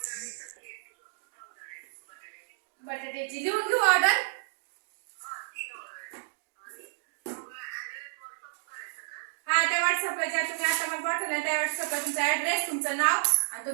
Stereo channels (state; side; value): silent; left; digital silence